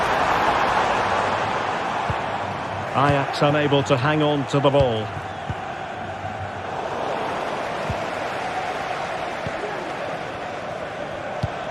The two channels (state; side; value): identical; both; correlation 1.00